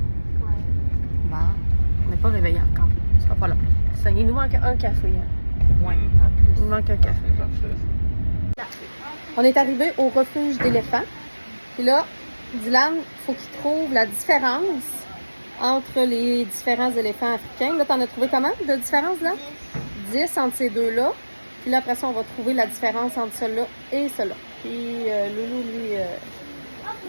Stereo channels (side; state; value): both; inverted; correlation -1.00